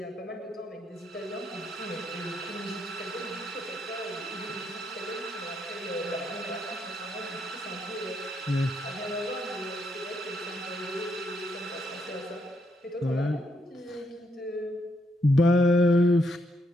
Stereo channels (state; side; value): normal; both; correlation 0.77